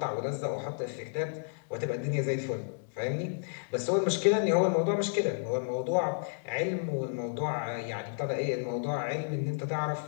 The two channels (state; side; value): silent; right; digital silence